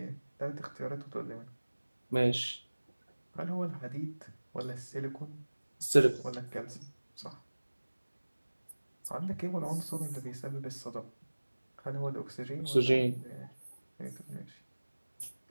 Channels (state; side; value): inverted; both; correlation -1.00